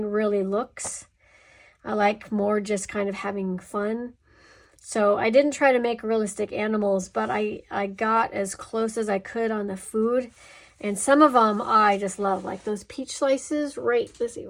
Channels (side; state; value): both; identical; correlation 1.00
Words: really looks. I like more just kind of having fun. So I didn't try to make realistic animals, but I got as close as I could on the food. And some of them I just love, like those peach slices, right, let's see,